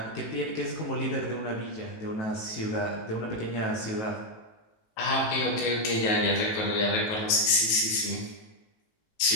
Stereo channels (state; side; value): late; right; 18 ms